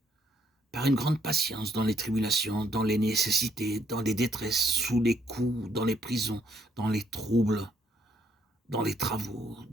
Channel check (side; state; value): both; normal; correlation 0.70